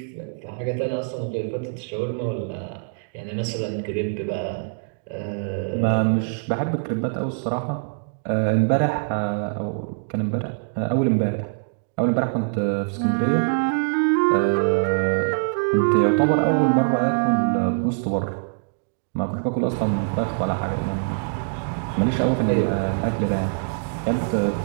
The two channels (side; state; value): left; silent; digital silence